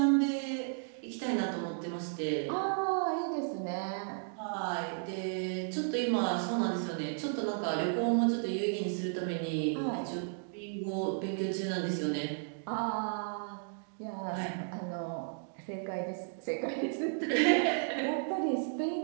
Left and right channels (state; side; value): silent; left; digital silence